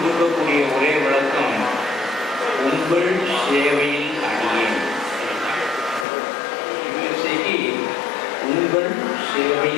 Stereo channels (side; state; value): right; drops out; at 6.1 s